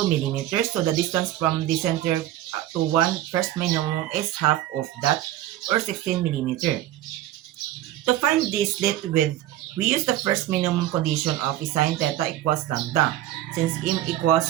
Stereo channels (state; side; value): quieter; left; 13.5 dB